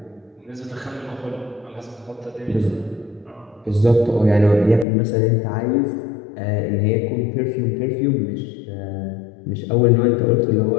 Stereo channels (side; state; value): right; drops out; at 4.9 s